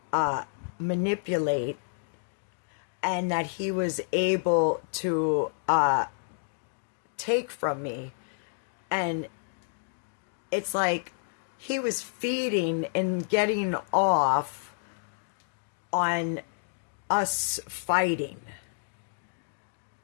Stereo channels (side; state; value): right; silent; digital silence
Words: manipulate, and that he was able to take from me. And it's like he was feeding and getting off on us fighting.